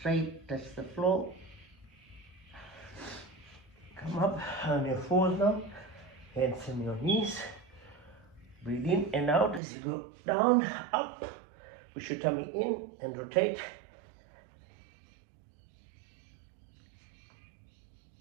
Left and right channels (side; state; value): left; drops out; at 9.6 s